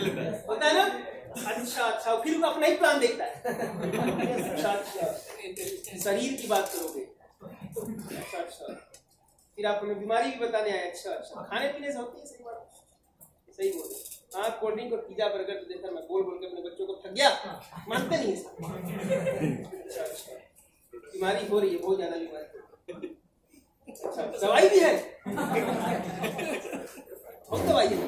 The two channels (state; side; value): identical; both; correlation 1.00